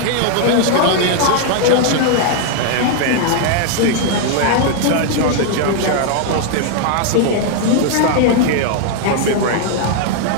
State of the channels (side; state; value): both; different; correlation 0.00